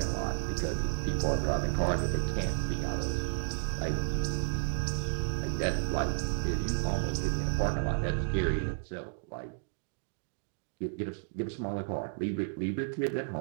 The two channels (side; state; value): left; silent; digital silence